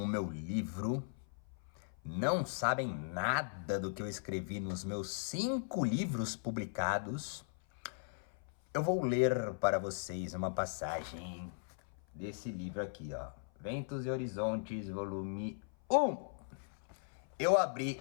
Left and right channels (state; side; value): silent; right; 52 dB below the other